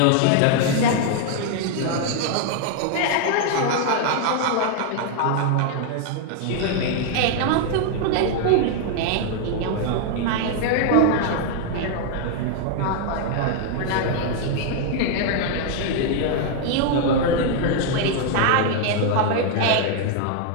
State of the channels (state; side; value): different; both; correlation 0.00